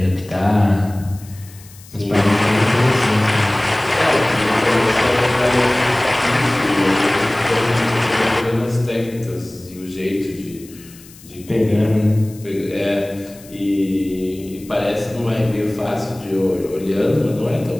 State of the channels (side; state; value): left; noise; hiss, 22 dB below the sound